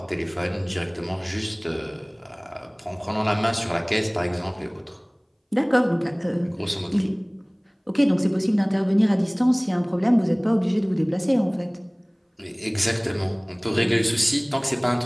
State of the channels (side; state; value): both; identical; correlation 1.00